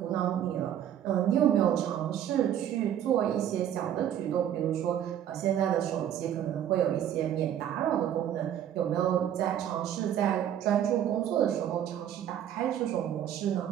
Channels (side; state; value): left; quieter; 10.4 dB